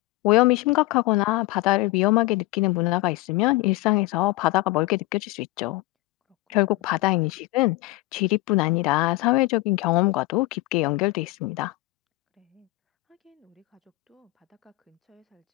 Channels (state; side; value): quieter; right; 20.3 dB